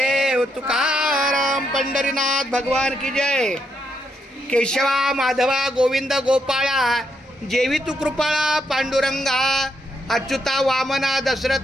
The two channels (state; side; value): normal; both; correlation 0.79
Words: तुकाराम पंढरीनाथ भगवान की जय. केशवा माधवा गोविंद गोपाळा, जेवी तू कृपाळा पांडुरंगा. अच्युता वामना